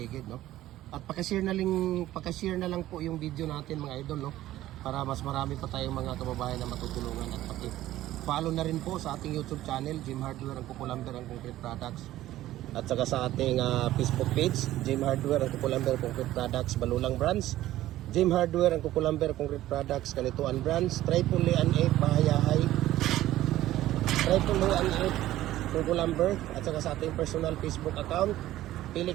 no? At paka-share na lang po yung video natin, mga idol, no? Para mas marami pa tayong mga kababayan na matutulungan, at paki-follow na rin po sa ating YouTube channel, Jim Hardware ang Kukulamber ang Concrete Products. At saka sa ating Facebook page, Jim Hardware ang Kukulamber Concrete Products, Balulang Brands, Jim Hardware ang Kukulamber Concrete Products, Kanituan Brands, Tripoli and 8 Bahayahay, Tripoli and 8 Kukulamber, at saka sa ating personal Facebook account,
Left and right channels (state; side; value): quieter; left; 14.6 dB